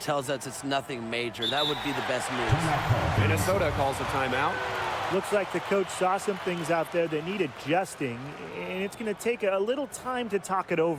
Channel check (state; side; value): identical; both; correlation 1.00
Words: us it's nothing major. That would be the best news. Minnesota calls a timeout. Looks like the coach saw some things out there that need adjusting, and it's going to take a little time to talk it